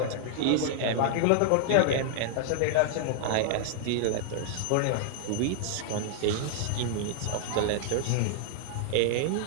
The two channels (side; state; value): both; different; correlation -0.01